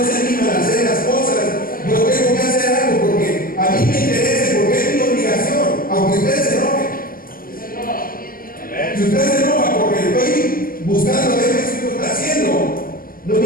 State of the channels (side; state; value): right; late; 0.42 ms